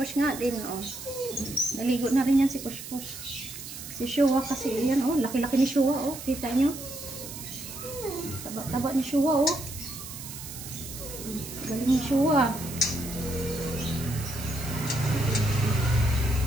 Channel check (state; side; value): noise; right; hiss, 11 dB below the sound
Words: nga din naligo na rin yan si Kush. Si Shua kasi yan laki-laki ni Shua kita nyo. Taba ni Shua galing ni Shua.